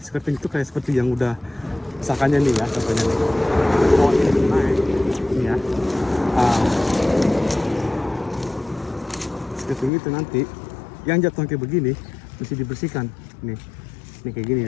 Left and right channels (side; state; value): right; drops out; at 9.9 s